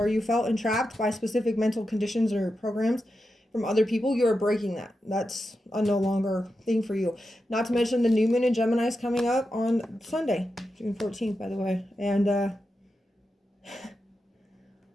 you felt entrapped by specific mental conditions or programs from other people, you're breaking that. That's a no longer thing for you. Not to mention the new moon in Gemini is coming up on Sunday, June 14th, by the way. And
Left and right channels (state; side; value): normal; both; correlation 0.89